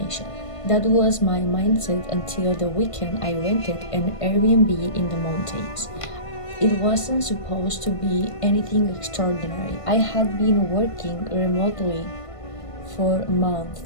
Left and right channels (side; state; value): right; late; 1.5 ms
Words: That was my mindset until the weekend I rented an Airbnb in the mountains. It wasn't supposed to be anything extraordinary. I had been working remotely for